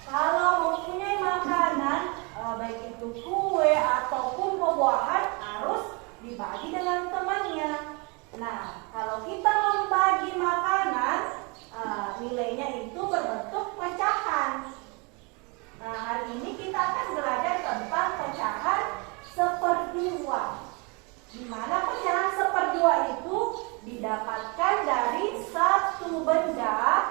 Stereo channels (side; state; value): left; quieter; 30.8 dB